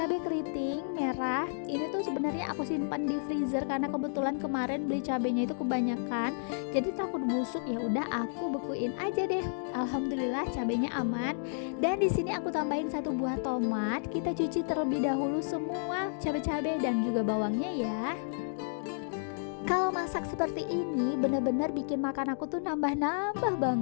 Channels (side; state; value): right; silent; digital silence